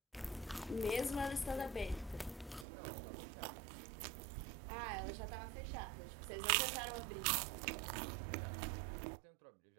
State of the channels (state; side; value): drops out; left; at 2.7 s